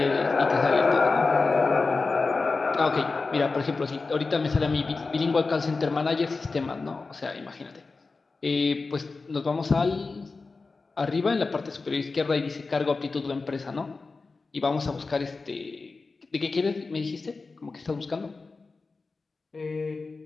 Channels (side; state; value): right; quieter; 4.0 dB